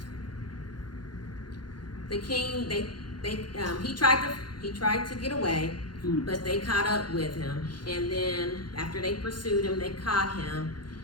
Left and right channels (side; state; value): right; late; 0.71 ms